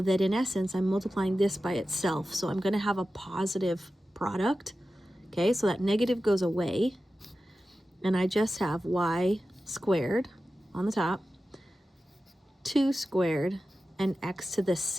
that in essence I'm multiplying this by itself. So I'm going to have a positive product, okay? So that negative goes away, and I just have y squared on the top, 2 squared, and x to the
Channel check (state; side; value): normal; both; correlation 0.93